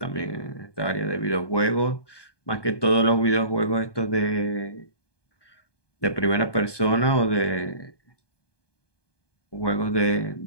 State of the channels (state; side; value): late; right; 1.2 ms